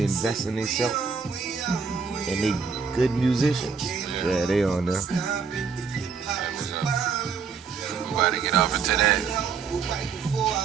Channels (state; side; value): quieter; left; 5.7 dB